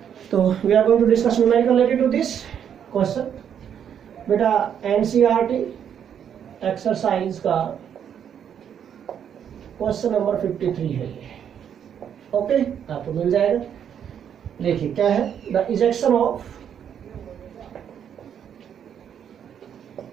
तो we are going to discuss numerical related to this question. बेटा एनसीईआरटी एक्सरसाइज का क्वेश्चन नंबर 53 है ये। ओके, आपको मिल जाएगा। देखिए क्या है, the ejection of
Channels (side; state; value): left; quieter; 8.7 dB